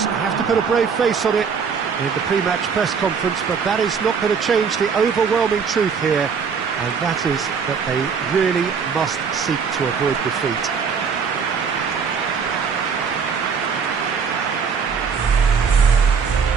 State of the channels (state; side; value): quieter; left; 6.1 dB